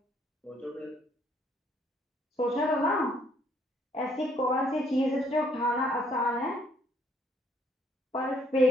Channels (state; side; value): normal; both; correlation 0.66